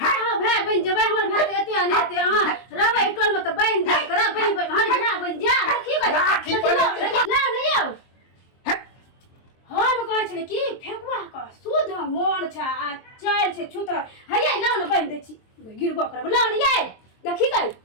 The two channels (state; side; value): late; right; 23 ms